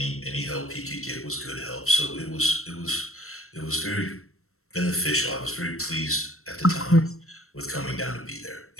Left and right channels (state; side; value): late; right; 0.63 ms